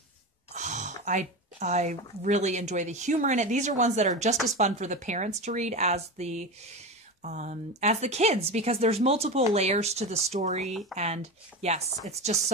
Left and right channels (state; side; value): normal; both; correlation 0.23